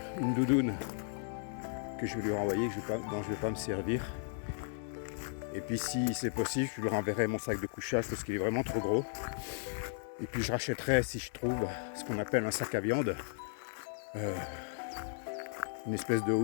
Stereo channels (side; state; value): right; silent; 54 dB below the other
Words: que je vais lui renvoyer, dont je ne vais pas me servir. Et puis si c'est possible, je lui renverrai mon sac de couchage parce qu'il est vraiment trop gros. Et puis je rachèterai, si je trouve, ce qu'on appelle un sac à viande. Une espèce de